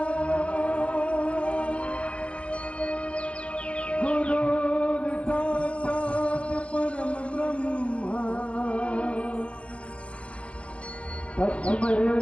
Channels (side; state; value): right; late; 0.061 ms